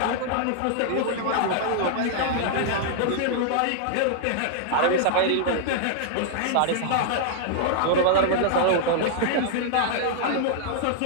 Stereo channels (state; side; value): different; both; correlation -0.01